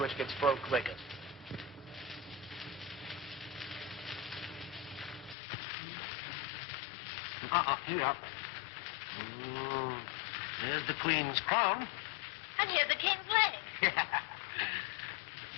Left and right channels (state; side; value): drops out; right; at 5.4 s